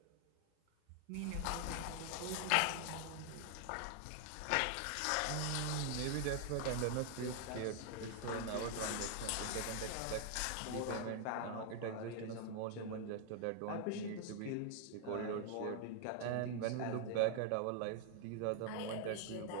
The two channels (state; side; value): different; both; correlation 0.00